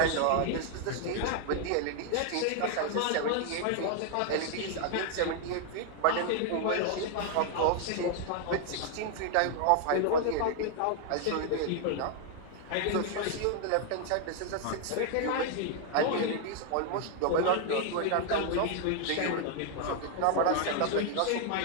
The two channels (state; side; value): different; both; correlation 0.00